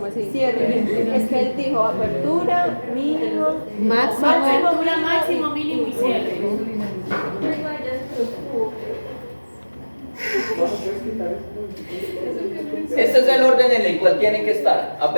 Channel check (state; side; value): inverted; both; correlation -1.00